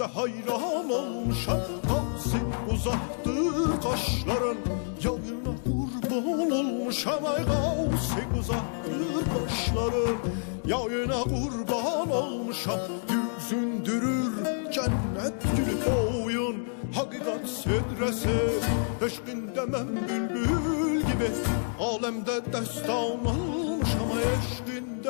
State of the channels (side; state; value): right; silent; 59 dB below the other